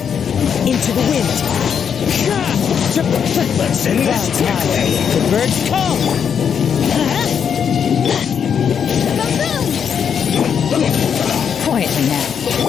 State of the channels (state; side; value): quieter; right; 7.5 dB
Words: Into the wind. Let's end this quickly. The birds come. Quietly now.